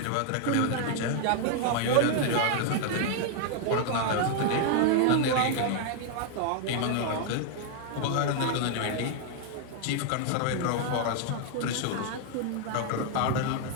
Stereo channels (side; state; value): both; different; correlation 0.00